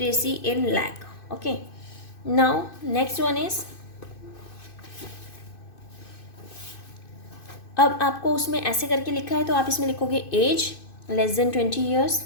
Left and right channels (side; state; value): right; late; 2.6 ms